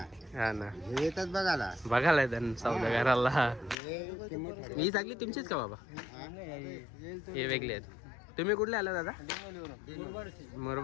हा ना हे येतात बघायला. बघायला येतात सौदागराला. हे किंमत ठरव. ही चांगली तुमचीच का बाबा? हे वेगळे आहेत. तुम्ही कुठले आला दादा?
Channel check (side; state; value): right; drops out; at 3.8 s